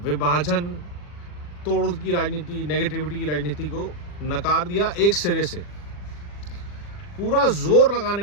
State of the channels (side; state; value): right; late; 40 ms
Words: विभाजन, तोड़ की राजनीति, नेगेटिविटी की राजनीति को नकार दिया एक सिरे से। पूरा जोर